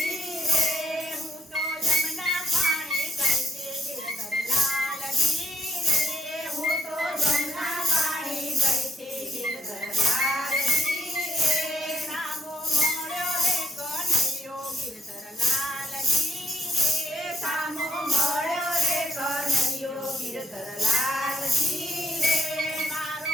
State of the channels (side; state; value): both; normal; correlation 0.75